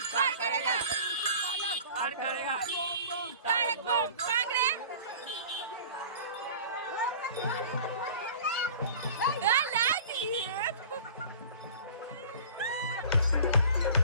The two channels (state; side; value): inverted; both; correlation -0.43